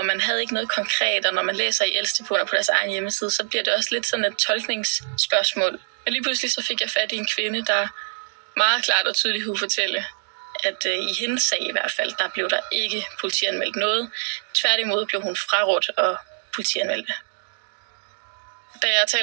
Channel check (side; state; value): left; silent; digital silence